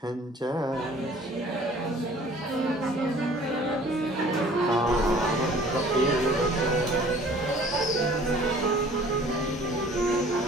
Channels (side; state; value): both; normal; correlation 0.51